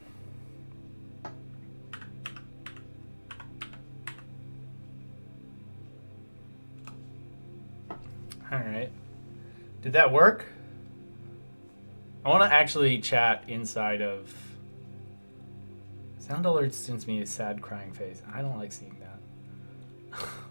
All right. Did that work? I want to actually chat inside of. Sound alert sends me a sad crying face. I don't like seeing that.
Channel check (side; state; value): both; inverted; correlation -1.00